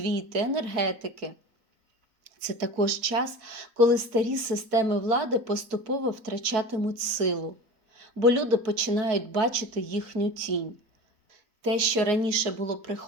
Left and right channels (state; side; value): late; left; 4.4 ms